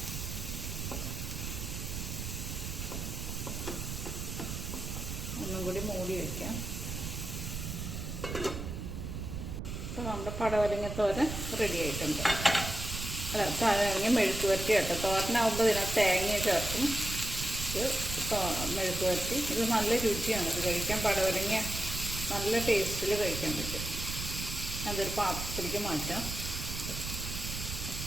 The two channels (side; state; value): right; noise; rumble, 5 dB below the sound